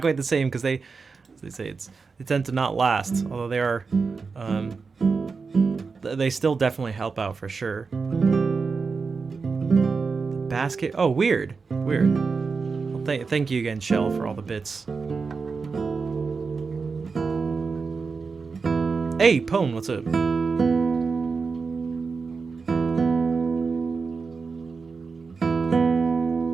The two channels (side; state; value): left; quieter; 4.8 dB